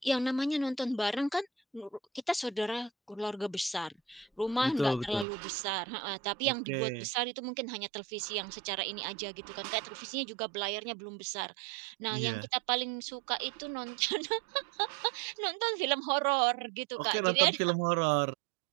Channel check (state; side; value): drops out; left; at 5.2 s